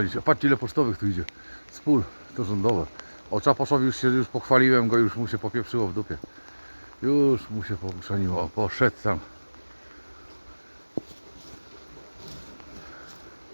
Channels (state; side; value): inverted; both; correlation -1.00